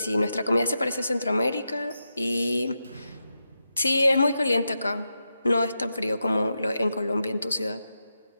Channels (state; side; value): inverted; both; correlation -0.88